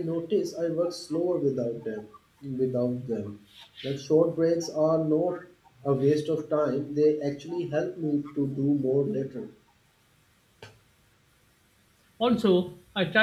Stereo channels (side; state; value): both; identical; correlation 1.00